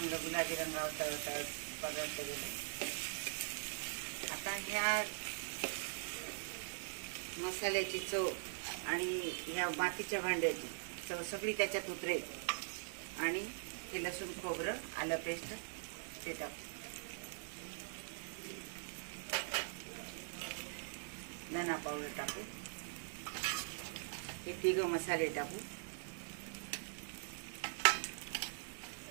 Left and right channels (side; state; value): left; silent; digital silence